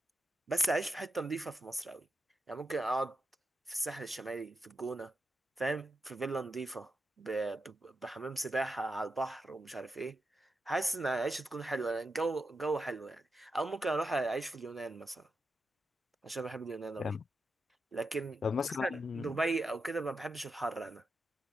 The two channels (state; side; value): normal; both; correlation 0.87